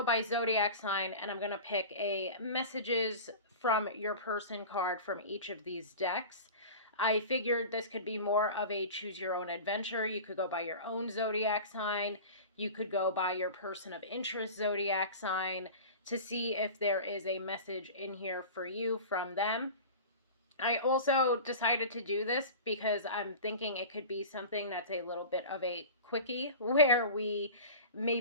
by zodiac sign and I'm going to pick a messages from your person card from each of these decks. I figured this could be more of a choose your own adventure. You could go by your own zodiac sign. You could go by your person of interest zodiac sign to see if there is a message in here for you from them. I also decided to do this because I'm thinking it could be something that's a little bit of a quickie where we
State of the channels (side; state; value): both; inverted; correlation -0.34